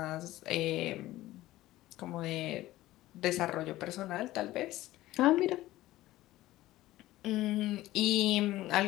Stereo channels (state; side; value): quieter; right; 16.3 dB